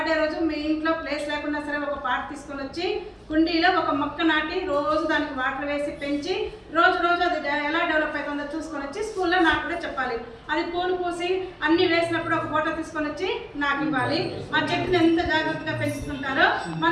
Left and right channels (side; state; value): both; identical; correlation 1.00